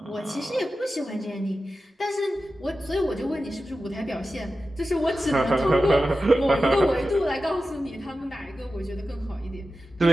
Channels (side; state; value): both; normal; correlation 0.93